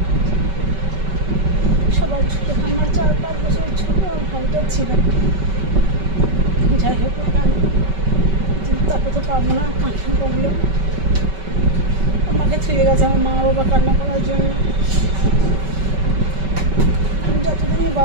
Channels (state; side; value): late; left; 5.2 ms